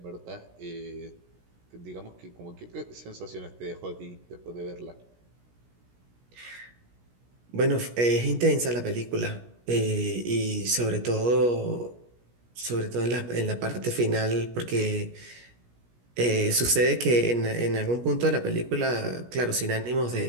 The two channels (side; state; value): left; late; 17 ms